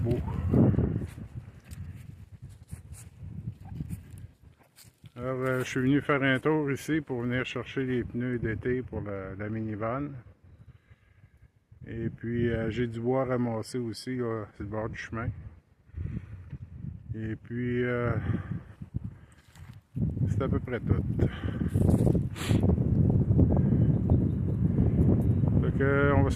Alors, je suis venu faire un tour ici pour venir chercher les pneus d'été pour la minivan. Et puis, j'ai du bois ramassé aussi, là, sur le bord du chemin. Et puis, c'est à peu près tout. Fait que, on va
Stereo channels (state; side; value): identical; both; correlation 1.00